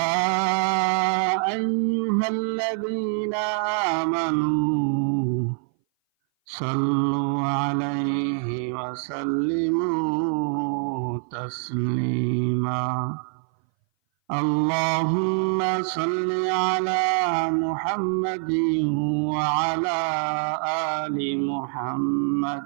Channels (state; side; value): silent; left; 58 dB below the other